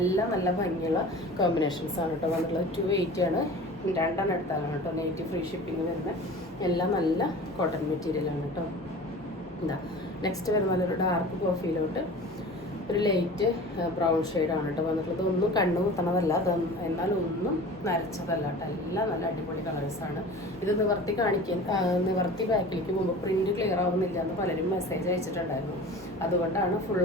നല്ല ഭംഗിയുള്ള കോമ്പിനേഷൻസാണ് കേട്ടോ വന്നിട്ടുള്ളത്. 280 ആണ്. 2 എടുത്താലാണ് കേട്ടോ. നെറ്റ് ഫ്രീ ഷിപ്പിംഗ് വരുന്നത്. എല്ലാം നല്ല കോട്ടൺ മെറ്റീരിയലാണ് കേട്ടോ. നെക്സ്റ്റ് വരുന്ന നല്ലൊരു ഡാർക്ക് കോഫിയിലോട്ട് ഒരു ലൈറ്റ് ബ്രൗൺ ഷെയ്ഡാണ് കേട്ടോ വന്നിട്ടുള്ളത്. ഒന്നും കണ്ണു കുത്തണതല്ല, എന്നാൽ ഒന്നും നരച്ചതല്ല കേട്ടോ. എല്ലാം നല്ല അടിപൊളി കളേഴ്സാണ്. ഇത് നിവർത്തി ബാക്കിലേക്ക് പോകുമ്പോൾ പ്രിൻറ്റ് ക്ലിയർ ആവുന്നില്ല എന്ന് പലരും മെസ്സേജ് അയച്ചിട്ടുണ്ടായിരുന്നു. അതുകൊണ്ടാണ് ഫുൾ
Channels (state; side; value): normal; both; correlation 0.39